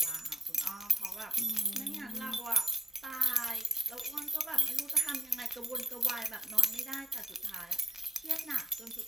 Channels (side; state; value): both; normal; correlation 0.75